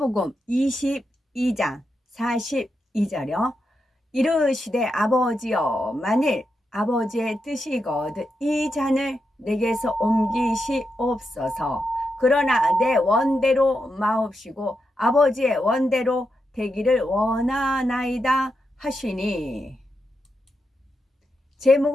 22장 42절요. 이르시되 아버지여 만일 아버지의 뜻이거든 이 잔을 내게서 옮기시옵소서. 그러나 내 원대로 마옵시고 아버지의 원대로 되기를 원하나이다 하시니.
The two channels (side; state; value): both; normal; correlation 0.86